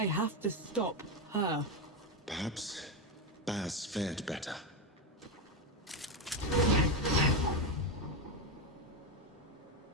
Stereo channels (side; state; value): both; normal; correlation 0.10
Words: have to stop her. Perhaps Baz fared better.